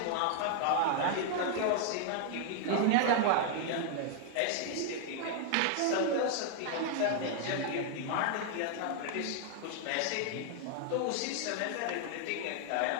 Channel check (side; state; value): both; different; correlation 0.00